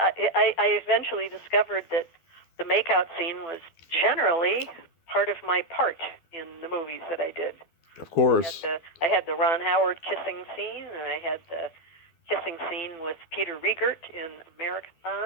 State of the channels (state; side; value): late; right; 12 ms